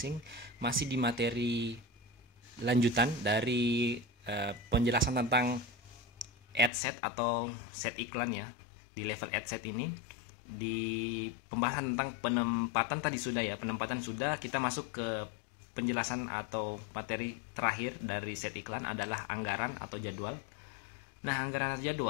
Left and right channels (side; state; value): right; drops out; at 6.7 s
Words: masih di materi lanjutan dari penjelasan tentang ad set atau set iklan ya. Di level ad set ini, di pembahasan tentang penempatan tadi sudah ya, penempatan sudah, kita masuk ke penjelasan atau materi terakhir dari set iklan adalah anggaran atau jadwal. Nah, anggaran atau